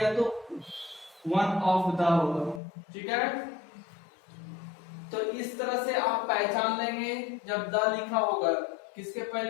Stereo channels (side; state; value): right; drops out; at 2.6 s